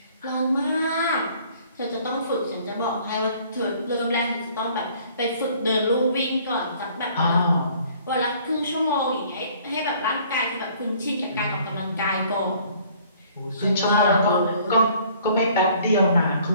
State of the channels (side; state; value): both; inverted; correlation -0.56